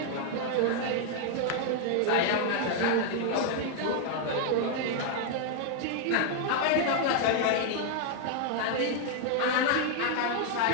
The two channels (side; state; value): both; different; correlation 0.00